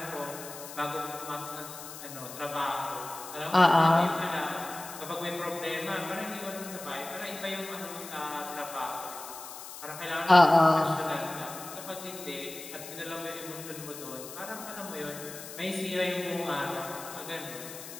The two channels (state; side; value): noise; left; hiss, 12 dB below the sound